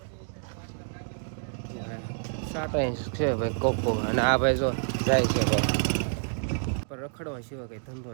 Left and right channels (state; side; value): silent; left; digital silence